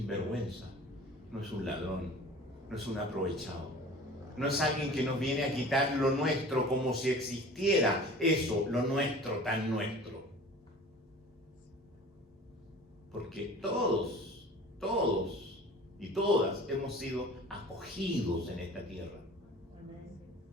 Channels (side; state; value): both; normal; correlation 0.43